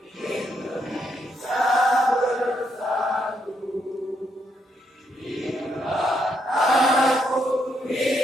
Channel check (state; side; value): normal; both; correlation 0.77